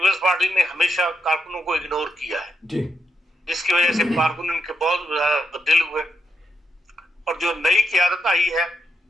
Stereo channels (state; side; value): normal; both; correlation 0.81